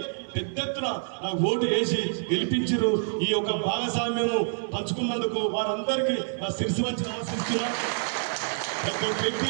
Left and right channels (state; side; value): silent; left; 60 dB below the other